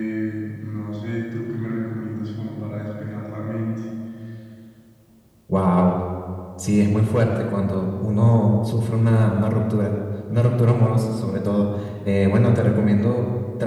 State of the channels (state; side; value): identical; both; correlation 1.00